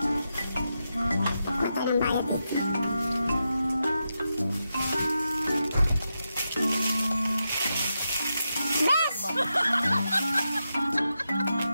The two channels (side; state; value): both; inverted; correlation -0.87